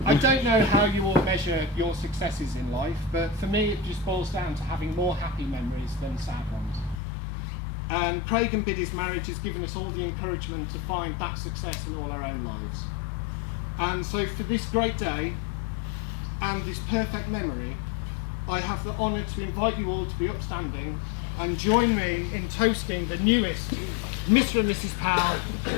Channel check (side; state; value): right; drops out; at 7.0 s